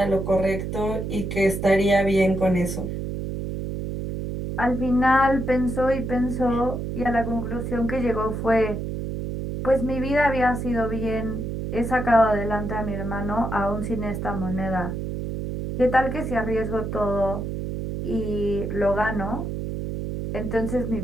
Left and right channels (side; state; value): right; noise; hum, 4 dB below the sound